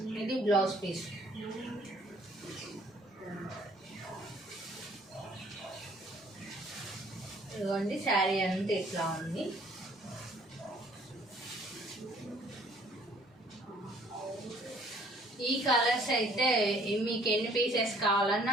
ఇది బ్లౌజ్ పీస్. ఇదిగోండి, శారీ అంతా ఇట్లా ఉంది. ఈ కలర్స్ అయితే మీకు ఎన్ని పీసెస్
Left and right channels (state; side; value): normal; both; correlation 0.59